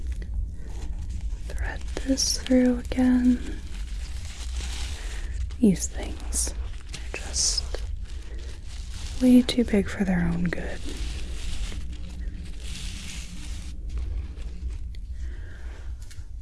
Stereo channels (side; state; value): both; identical; correlation 1.00